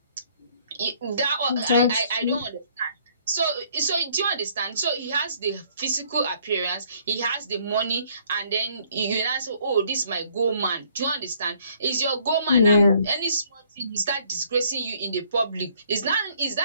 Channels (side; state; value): both; inverted; correlation -0.63